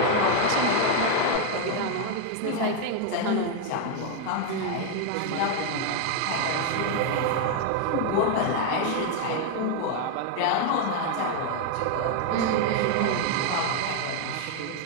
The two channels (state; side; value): different; both; correlation 0.01